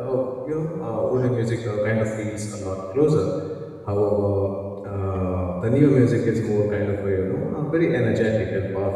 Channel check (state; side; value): identical; both; correlation 1.00